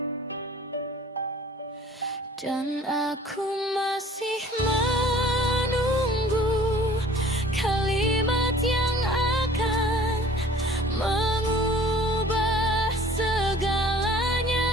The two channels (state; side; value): normal; both; correlation 0.50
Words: dan aku masih menunggu kalimat yang akan mengubah